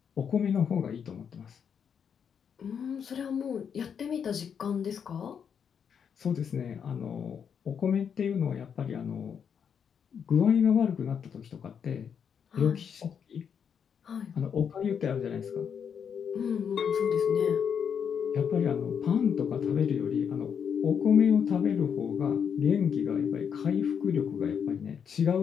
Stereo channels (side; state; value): right; quieter; 7.4 dB